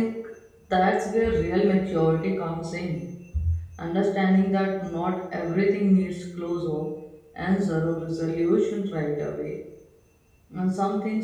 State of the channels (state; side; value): identical; both; correlation 1.00